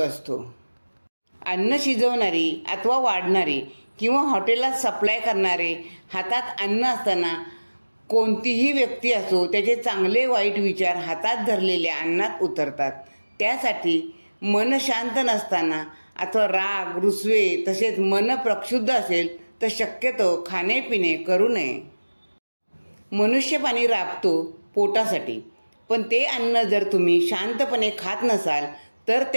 अन्न शिजवणारी अथवा वाढणारी किंवा हॉटेलात सप्लाय करणारे हातात अन्न असताना कोणतीही व्यक्ती असो, त्याचे चांगले वाईट विचार हातात धरलेल्या अन्नात उतरतात. त्यासाठी मन शांत नसताना अथवा राग रुसवे तसेच मन प्रक्षुब्ध असेल तर शक्यतो खाणेपिणे करू नये. मनुष्य पाणी राबतो पोटासाठी, पण ते अन्न जर तुम्ही शांतपणे खात नसाल तर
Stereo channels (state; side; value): inverted; both; correlation -1.00